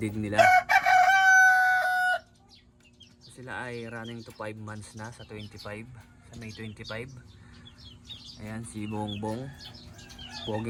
nila. So, sila ay running to 5 months na sa 25, sa May 25. Ayan si Bongbong,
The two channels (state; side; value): identical; both; correlation 1.00